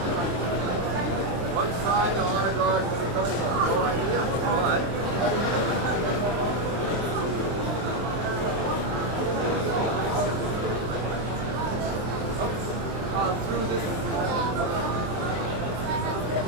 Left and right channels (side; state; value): left; late; 23 ms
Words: One side, the honor guard, no idea. All right. Through this.